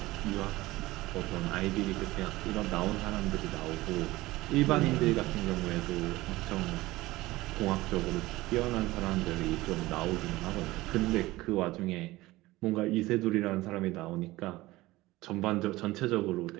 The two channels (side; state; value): left; quieter; 18.8 dB